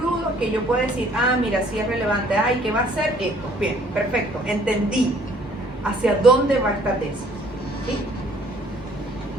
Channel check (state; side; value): normal; both; correlation 0.59